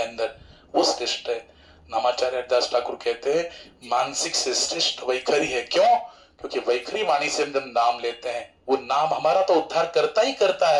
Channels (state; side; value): identical; both; correlation 1.00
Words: वो श्रेष्ठ है। नामाचार्य हरिदास ठाकुर कहते हैं मानसिक से श्रेष्ठ वैखरी है। क्यों, क्योंकि वैखरी वाणी से हम जब नाम लेते हैं वो नाम हमारा तो उद्धार करता ही करता